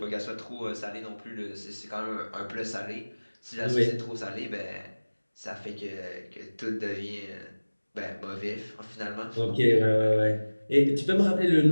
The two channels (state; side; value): inverted; both; correlation -1.00